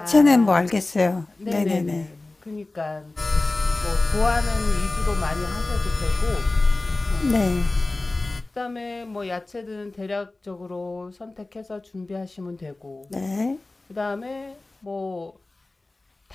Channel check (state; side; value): quieter; right; 3.1 dB